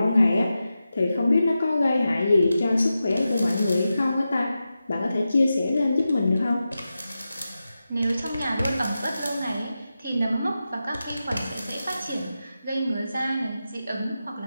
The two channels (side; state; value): both; inverted; correlation -0.92